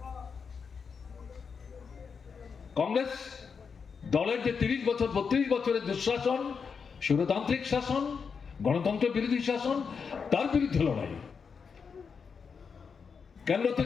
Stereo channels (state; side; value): quieter; right; 5.9 dB